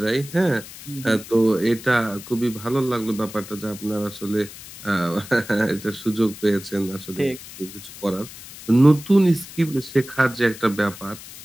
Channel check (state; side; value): noise; left; hiss, 15 dB below the sound